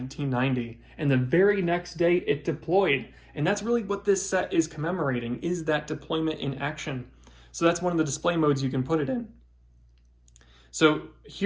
And the very next day it deployed. And that's really what this set is commemorating, is that deployment in action. So that's one of the display modes you can put it in. So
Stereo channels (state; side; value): identical; both; correlation 1.00